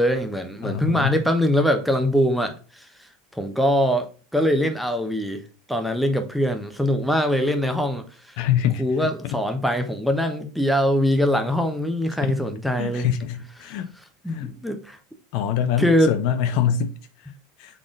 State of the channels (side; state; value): both; normal; correlation 0.61